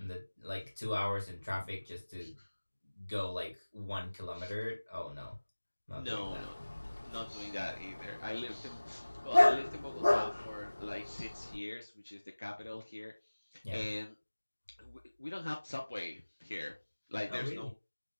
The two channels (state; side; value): inverted; both; correlation -1.00